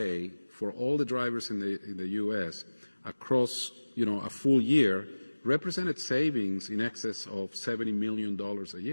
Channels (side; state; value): both; inverted; correlation -1.00